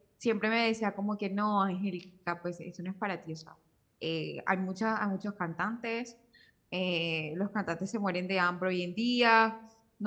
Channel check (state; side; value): identical; both; correlation 1.00